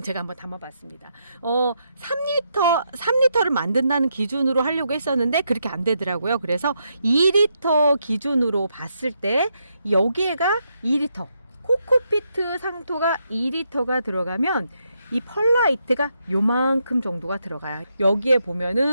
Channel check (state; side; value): inverted; both; correlation -0.80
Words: 제가 한번 담아봤습니다. 3리터를 만든다는 기준으로 하려고 했었는데 그렇게 안 되더라고요. 그래서 2리터 기준으로 봤을 때 여기에가 2리터, 코코피트 상토가 2리터가 들어가면 이 펄라이트가 요만큼 정도가 들어가요. 여기에